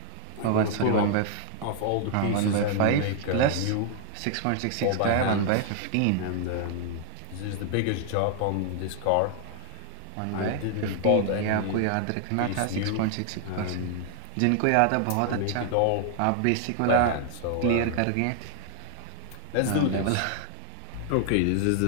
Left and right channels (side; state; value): both; different; correlation 0.00